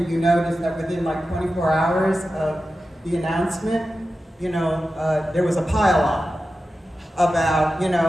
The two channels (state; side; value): normal; both; correlation 0.93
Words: you noticed that within like 24 hours of the announcement, there was a pile-on about,